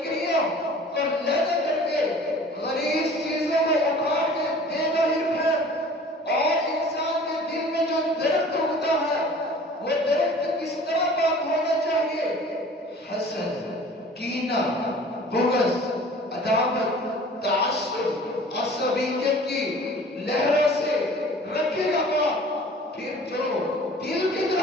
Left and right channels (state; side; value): normal; both; correlation 0.46